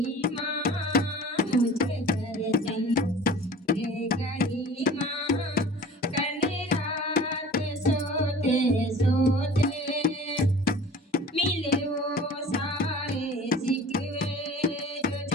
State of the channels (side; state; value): both; normal; correlation 0.43